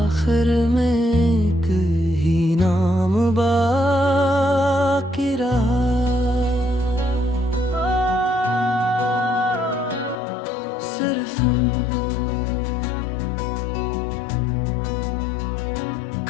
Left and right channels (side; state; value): right; drops out; at 10.2 s